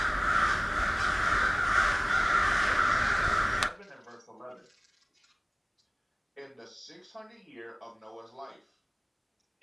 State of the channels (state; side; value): identical; both; correlation 1.00